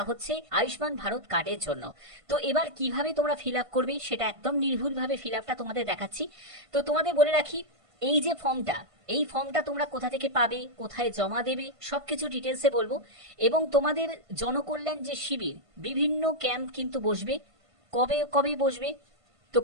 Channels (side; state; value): left; late; 1.5 ms